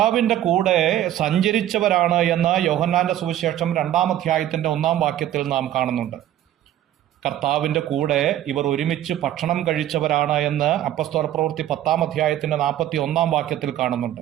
കൂടെ സഞ്ചരിച്ചവരാണ് എന്ന് യോഹന്നാന്റെ സുവിശേഷം 2-ാം അധ്യായത്തിന്റെ 1-ാം വാക്യത്തിൽ നാം കാണുന്നുണ്ട്. കർത്താവിന്റെ കൂടെ ഇവർ ഒരുമിച്ച് ഭക്ഷണം കഴിച്ചവരാണ് എന്ന് അപ്പസ്തോല പ്രവൃത്തി 10-ാം അധ്യായത്തിന്റെ 41-ാം വാക്യത്തിൽ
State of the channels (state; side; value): quieter; left; 12.4 dB